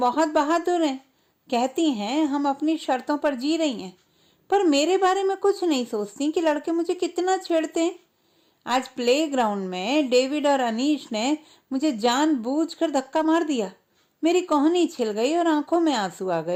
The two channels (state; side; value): identical; both; correlation 1.00